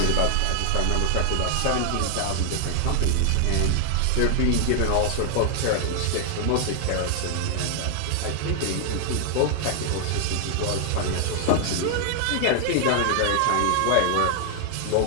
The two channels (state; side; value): different; both; correlation 0.00